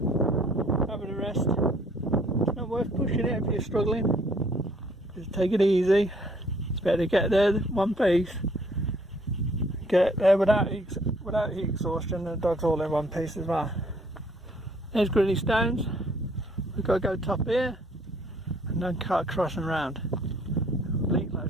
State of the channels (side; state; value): both; normal; correlation 0.62